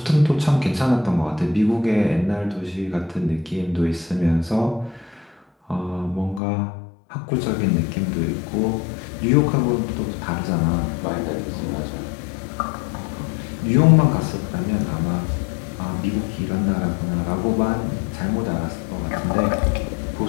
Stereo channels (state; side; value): drops out; right; at 6.4 s